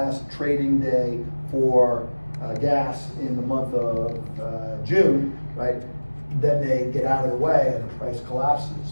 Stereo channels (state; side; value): inverted; both; correlation -1.00